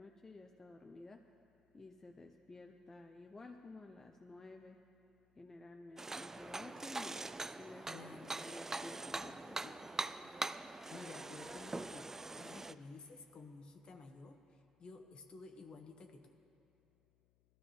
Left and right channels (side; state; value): left; noise; hum, 29 dB below the sound